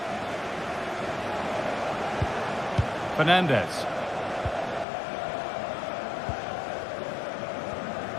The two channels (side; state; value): right; drops out; at 4.9 s